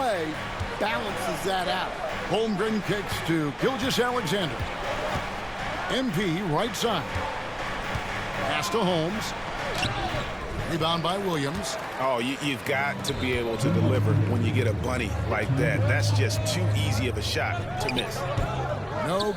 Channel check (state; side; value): identical; both; correlation 1.00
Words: balances that out. Holmgren kicks to Gilgeous-Alexander. MP right side. Pass to Holmes. Rebound by Williams. Oh, you've got to be able to deliver when you get a bunny like that. That's just too easy of a shot to miss. No